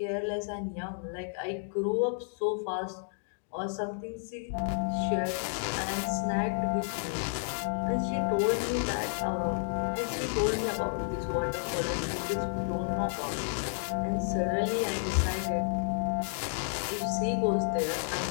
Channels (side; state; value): right; silent; digital silence